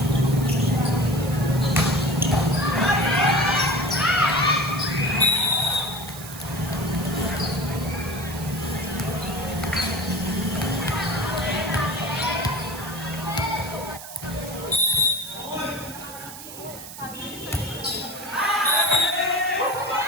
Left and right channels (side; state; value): right; noise; hiss, 13 dB below the sound